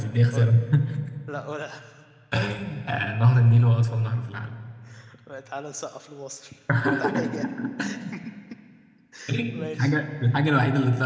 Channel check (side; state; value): both; identical; correlation 1.00